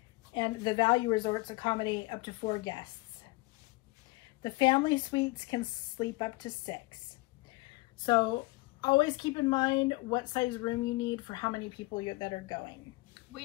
and the value resorts accommodate up to 4 guests. The family suites can sleep up to 6. So always keep in mind what size room you need for how many people that are going. We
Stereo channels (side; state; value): right; quieter; 22.9 dB